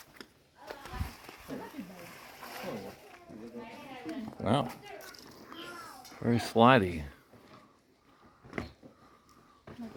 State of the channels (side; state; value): both; identical; correlation 1.00